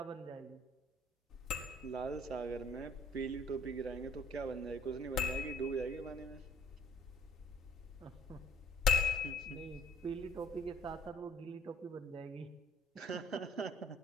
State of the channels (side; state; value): both; normal; correlation 0.53